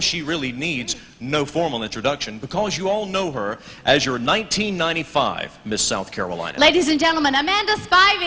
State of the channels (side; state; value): both; identical; correlation 1.00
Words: really needs no formal introduction, because you all know her as your 1995 Miss South Carolina. Ladies and gentlemen, Amanda